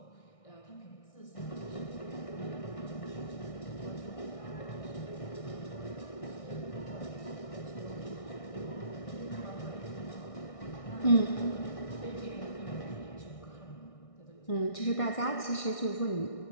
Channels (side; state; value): right; late; 1.6 ms